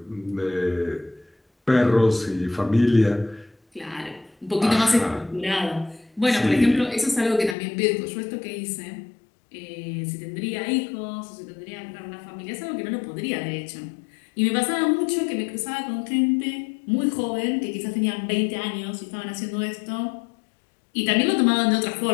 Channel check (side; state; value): right; drops out; at 7.6 s